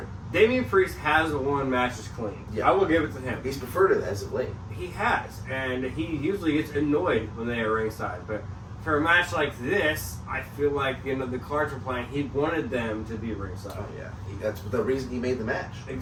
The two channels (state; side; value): identical; both; correlation 1.00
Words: Damian Priest has won matches clean. Yeah. I will give it to him. He's preferred it as of late. He has, and he usually gets annoyed when they are ringside. But for a match like this, I feel like the cards were playing. He wanted them to be ringside. Oh yeah, that's the reason he made the match.